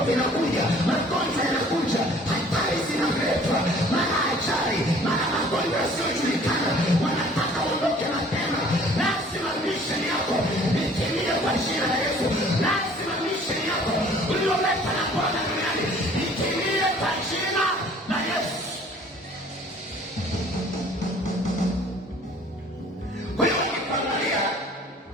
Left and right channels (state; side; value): normal; both; correlation 0.53